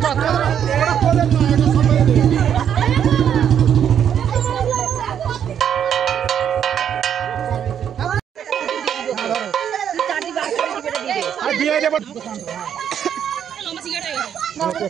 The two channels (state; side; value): quieter; left; 8.9 dB